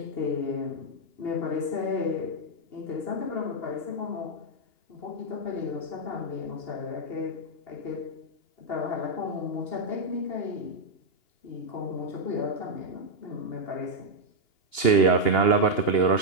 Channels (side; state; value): right; late; 2.8 ms